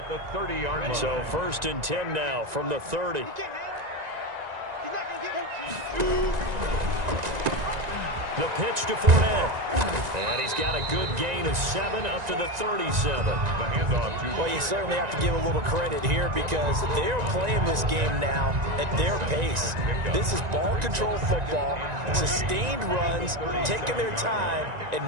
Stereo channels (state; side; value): late; left; 1.9 ms